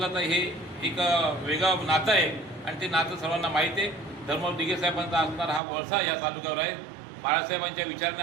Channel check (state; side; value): drops out; left; at 5.6 s